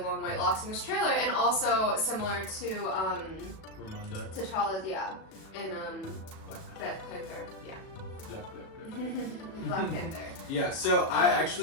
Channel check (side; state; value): right; late; 37 ms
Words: long white locks in this trailer, and also similar to T'Challa's, in Black Panther, Black Panther. Yeah, so I